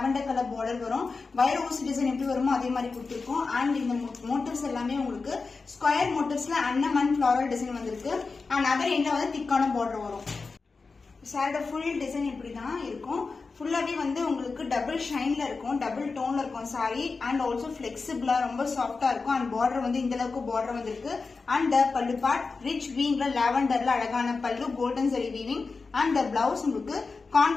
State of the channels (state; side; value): quieter; right; 4.3 dB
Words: கலர் பார்டர் வரும். வைர ஊசி டிசைன் எப்படி வருமோ அதே மாதிரி கொடுத்துருக்கோம். அண்ட் இந்த மோட்டிவ்ஸ் எல்லாமே உங்களுக்கு ஸ்கொயர் மோட்டிவ்ஸ்ல அன்னம் அண்ட் ஃபிளாரல் டிசைன் வந்திருக்கு. அண்ட் அதர் எண்ட்ல வந்து திக்கான பார்டர் வரும். சாரோட ஃபுல் டிசைன் இப்படிதான் இருக்கும். ஃபுல்லாவே வந்து உங்களுக்கு டபுள் ஷைன்ல இருக்கும், டபுள் டோன்ல இருக்கும் சாரி. அண்ட் ஆல்சோ பிளெக்சிபிளா ரொம்ப சாஃப்டா இருக்கும். அண்ட் பார்டர் வந்து இந்த அளவுக்கு பார்டர் வந்திருக்கு. அண்ட் பல்லு பார்ட் ரிச் வீவிங்ல லாவெண்டர்ல அழகான பல்லு, golden zari weaving. And blouse உங்களுக்கு